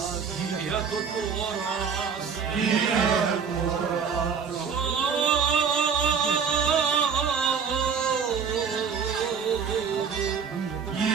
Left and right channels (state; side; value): quieter; left; 6.4 dB